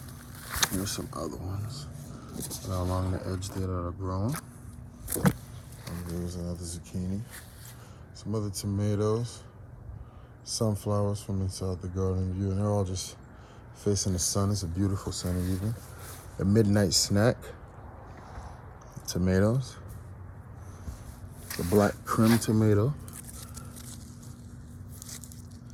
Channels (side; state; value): both; identical; correlation 1.00